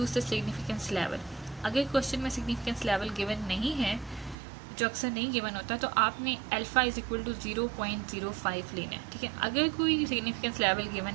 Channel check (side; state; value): left; drops out; at 4.4 s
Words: द सिग्निफिकेंस लेवल। अगर क्वेश्चन में सिग्निफिकेंस लेवल गिवन नहीं है, जो अक्सर नहीं गिवन होता, तो आपने अल्फ़ा इज इक्वल टू 0.05 लेना है। ठीक है, अगर कोई सिग्निफिकेंस लेवल गिवन